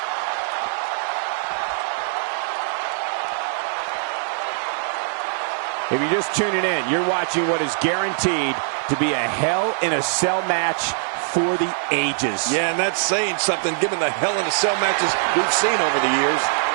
If you're just tuning in, you're watching what is guaranteed to be a Hell in a Cell match for the ages. Yeah, and that's saying something given the Hell in a Cell matches we've seen over the years.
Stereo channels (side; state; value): left; silent; digital silence